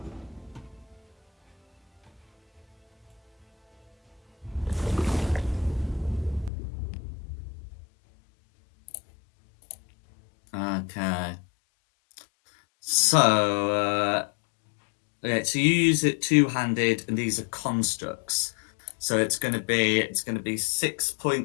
Okay. So, okay, so you use it two-handed, and these are constructs. So it's going to be 6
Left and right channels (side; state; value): right; drops out; at 6.5 s